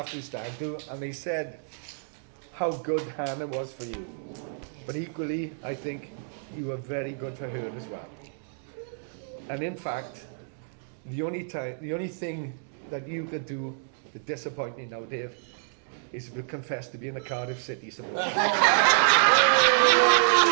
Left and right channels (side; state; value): left; silent; digital silence